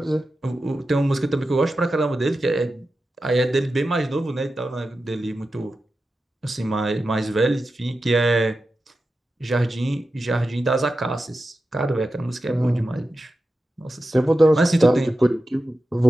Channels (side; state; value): both; normal; correlation 0.92